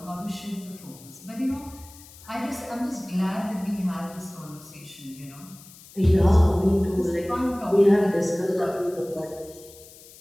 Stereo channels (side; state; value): left; noise; hiss, 21 dB below the sound